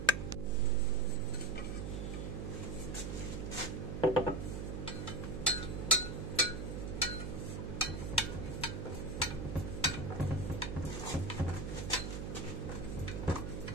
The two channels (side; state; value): right; noise; hum, 4 dB below the sound